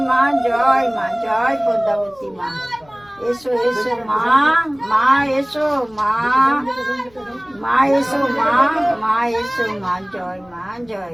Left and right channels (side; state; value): left; noise; rumble, 29 dB below the sound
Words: মা, জয় মা, জয় পদ্মাবতী মা। এসো এসো মা, মা এসো মা, মা এসো মা, মা এসো মা, জয় মা,